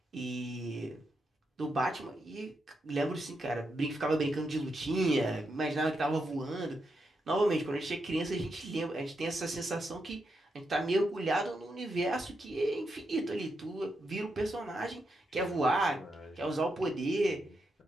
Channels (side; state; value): both; normal; correlation 0.84